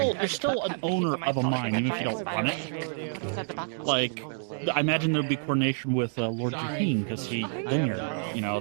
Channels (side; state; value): left; silent; digital silence